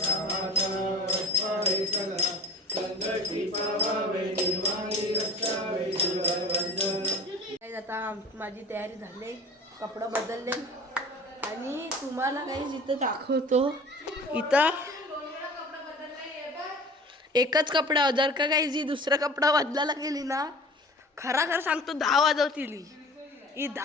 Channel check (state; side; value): normal; both; correlation 0.41